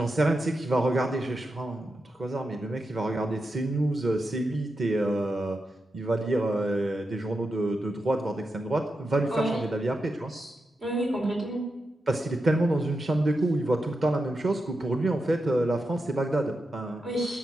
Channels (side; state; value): both; normal; correlation 0.88